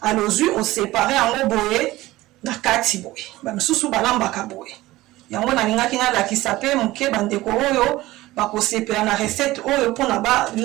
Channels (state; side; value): quieter; left; 17.7 dB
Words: alozwi osepare yango boye na kati boye bamisusu balambaka boye yango nalingaki nalakisa mpe moke bandeko oyo bakosepela na recette oyo mpona